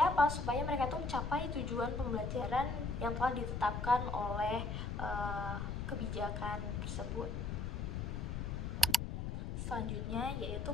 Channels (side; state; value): left; noise; rumble, 3 dB below the sound